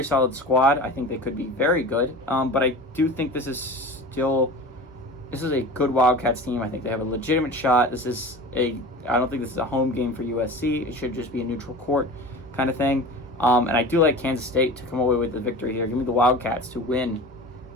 solid squad. I think they could be very good. But I do think this is a good Wildcats team. I think they have a legitimate shot. I don't think this is a home game for USC. It should just be a neutral court kind of thing. And I do like Kansas State to come away with the victory here. Give me the Wildcats to win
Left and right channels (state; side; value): normal; both; correlation 0.35